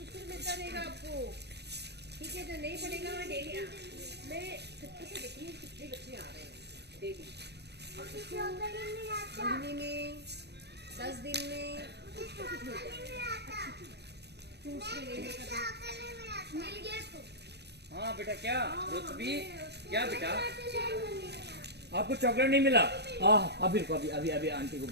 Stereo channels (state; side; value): late; left; 0.49 ms